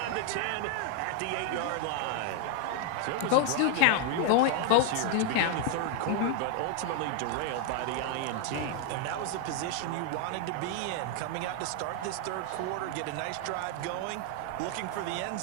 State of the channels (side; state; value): both; different; correlation 0.00